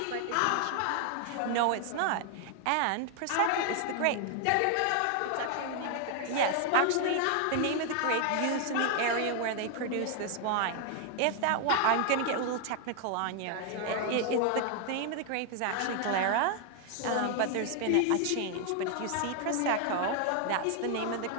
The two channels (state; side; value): different; both; correlation 0.00